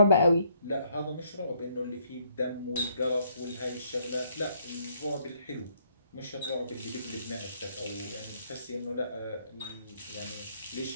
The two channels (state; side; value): inverted; both; correlation -0.68